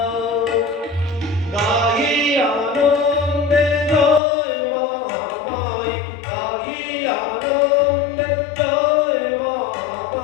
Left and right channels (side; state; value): right; drops out; at 4.2 s